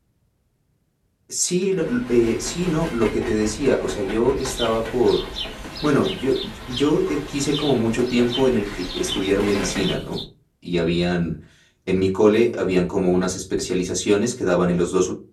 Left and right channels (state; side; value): identical; both; correlation 1.00